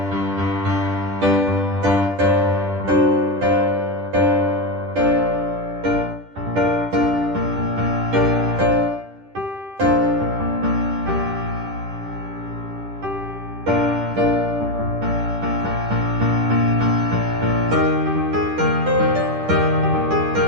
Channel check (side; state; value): left; late; 10 ms